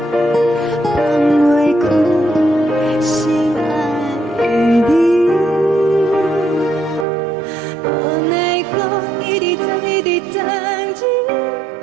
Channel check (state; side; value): drops out; left; at 7.1 s